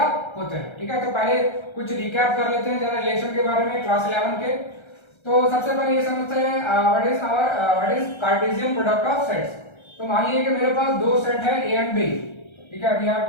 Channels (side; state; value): right; late; 1.3 ms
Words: होते हैं। ठीक है, तो पहले कुछ रिकैप कर लेते हैं जरा रिलेशन के बारे में क्लास 11 के। तो सबसे पहले ये समझते हैं what is Cartesian product of sets. तो मान लीजिए कि मेरे पास दो सेट है ए एंड बी। ठीक है, we have